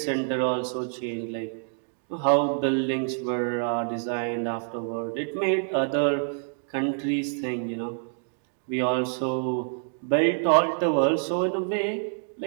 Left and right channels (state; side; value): silent; left; digital silence